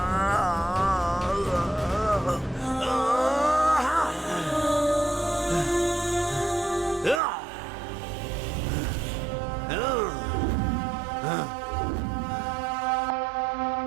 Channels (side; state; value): left; drops out; at 7.2 s